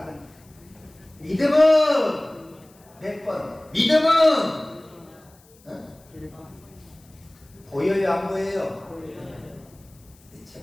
믿음은 몇 번? 믿음은 보여요, 안 보여요?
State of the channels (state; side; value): noise; left; hiss, 29 dB below the sound